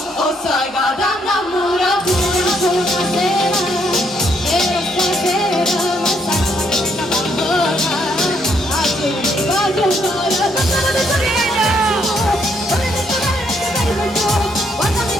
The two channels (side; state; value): both; normal; correlation 0.72